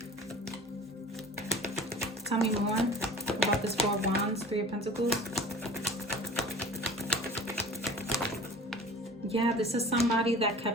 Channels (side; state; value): both; normal; correlation 0.42